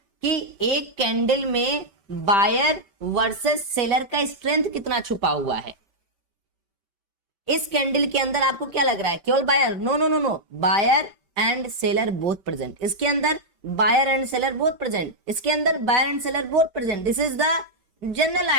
कि एक candle में buyer versus seller का strength कितना छुपा हुआ है। इस candle के अंदर आपको क्या लग रहा है, केवल buyer? No no no no, buyer and seller both present. इसके अंदर buyer and seller both present, इसके अंदर buyer and seller both present. This is the general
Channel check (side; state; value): left; late; 5.1 ms